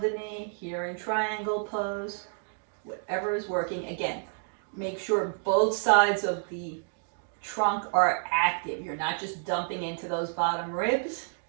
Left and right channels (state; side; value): silent; left; digital silence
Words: the knee. Here in triangle pose. Whatever is working. Again, make sure both sides of the trunk are active. You're not just dumping into those bottom ribs.